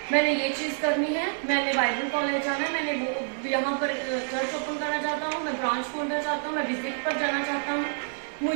मैंने ये चीज करनी है, मैंने बाइबल कॉलेज जाना है, मैंने वो यहाँ पर चर्च ओपन करना चाहता हूँ, मैं ब्रांच खोलना चाहता हूँ, मैं विजिट पर जाना चाहता हूँ,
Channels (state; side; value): silent; left; digital silence